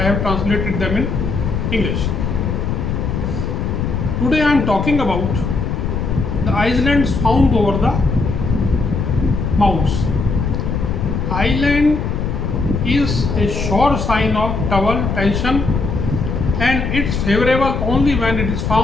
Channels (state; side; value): noise; left; rumble, 2 dB below the sound